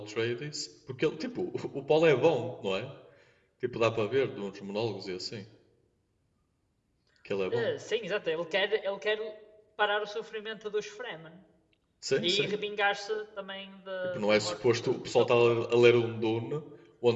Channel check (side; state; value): both; identical; correlation 1.00